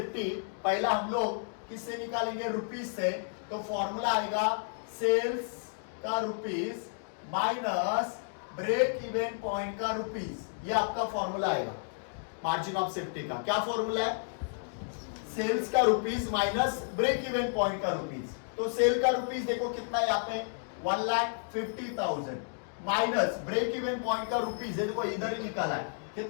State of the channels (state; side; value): silent; right; digital silence